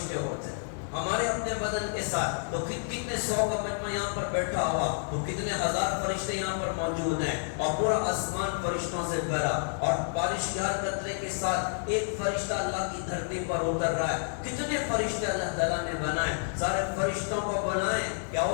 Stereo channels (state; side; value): silent; right; digital silence